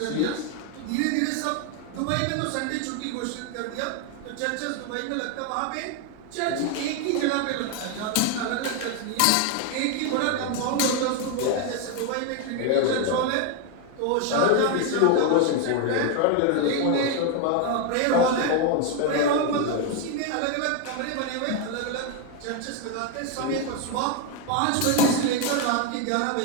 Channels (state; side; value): different; both; correlation 0.01